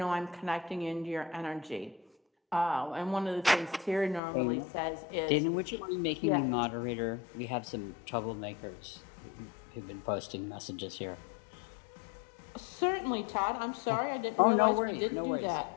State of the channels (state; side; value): drops out; right; at 4.2 s